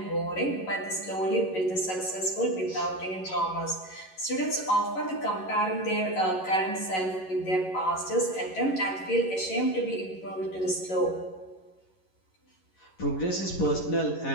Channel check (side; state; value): right; late; 11 ms